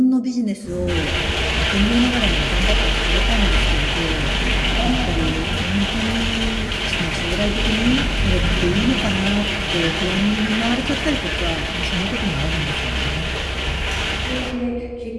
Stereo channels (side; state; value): both; identical; correlation 1.00